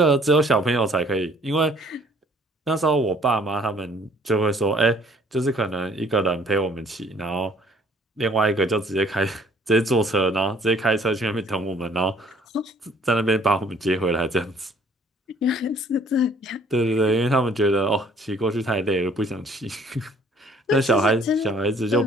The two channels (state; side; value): normal; both; correlation 0.59